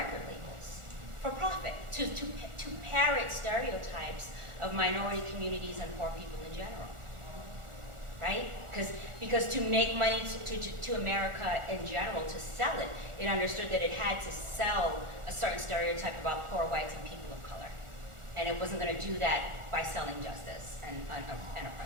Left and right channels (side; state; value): left; late; 1.4 ms